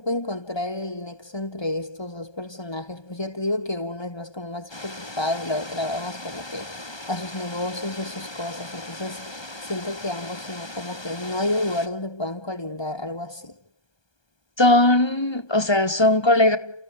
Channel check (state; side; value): late; right; 1.2 ms